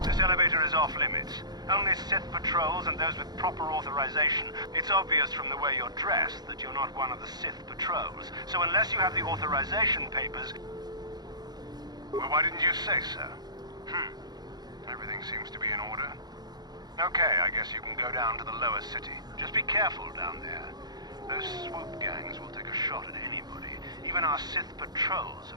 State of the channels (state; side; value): late; left; 0.20 ms